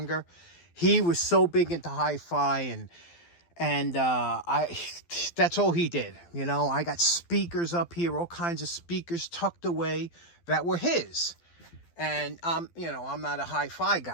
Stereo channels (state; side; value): late; right; 12 ms